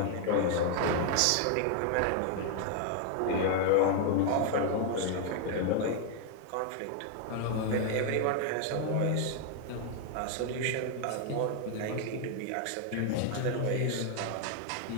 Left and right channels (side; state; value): both; different; correlation 0.00